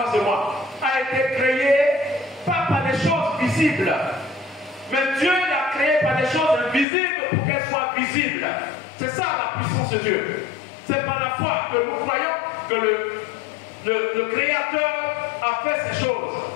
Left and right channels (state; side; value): drops out; right; at 6.9 s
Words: de moi a été créée pas par des choses visibles. Mais Dieu l'a créée par des choses invisibles pour qu'elles soient visibles. C'est ça la puissance de Dieu. C'est par la foi que nous croyons que le Créateur a fait ces choses.